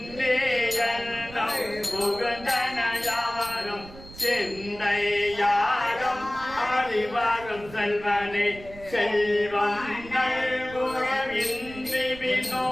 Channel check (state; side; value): noise; right; rumble, 17 dB below the sound